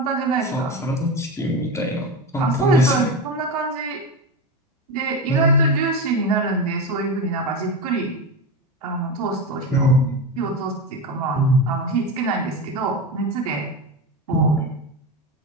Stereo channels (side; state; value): both; normal; correlation 0.20